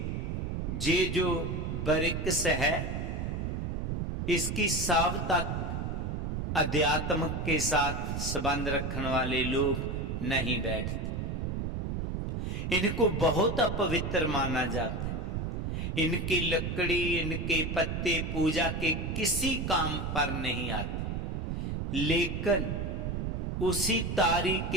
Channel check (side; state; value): right; noise; rumble, 2 dB below the sound